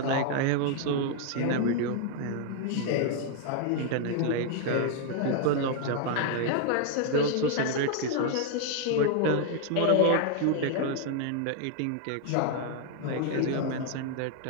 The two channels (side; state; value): both; different; correlation 0.00